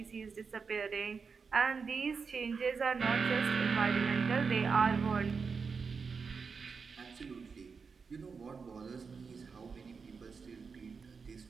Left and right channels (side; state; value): left; quieter; 5.3 dB